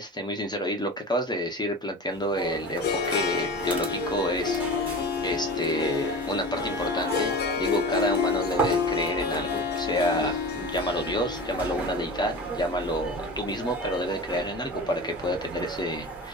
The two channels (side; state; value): both; normal; correlation 0.32